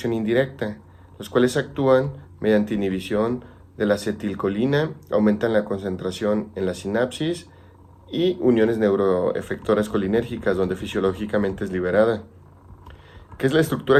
indirecta, los cuales actúan mediante inhibición de la acetilcolina, aumentan la concentración en la sinapsis y uniones neuroefectoras colinérgicas donde fisiológicamente es liberada. ¿Qué es la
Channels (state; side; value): identical; both; correlation 1.00